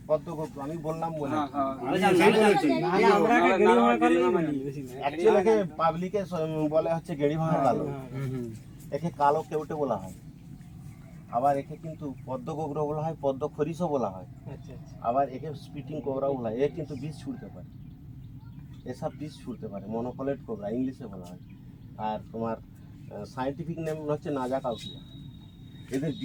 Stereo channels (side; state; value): both; identical; correlation 1.00